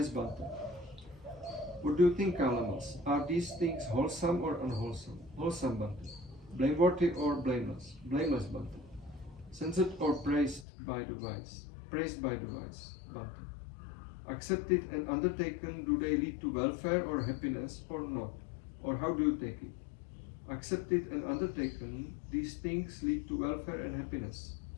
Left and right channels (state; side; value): drops out; right; at 10.7 s